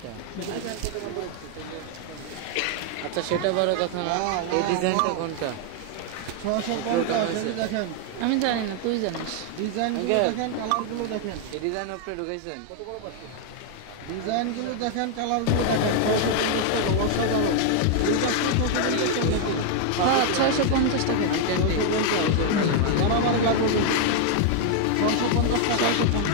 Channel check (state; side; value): different; both; correlation 0.01